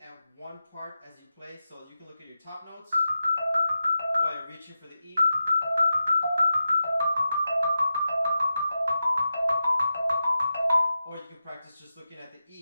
at one part as you play. So you can look at your top notes while you're reaching for the E. Or you can practice just looking at the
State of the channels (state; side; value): inverted; both; correlation -0.90